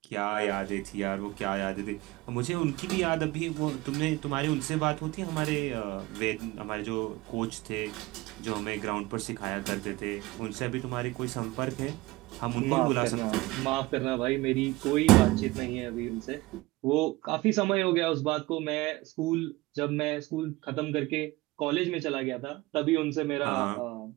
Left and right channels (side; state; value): left; quieter; 20.5 dB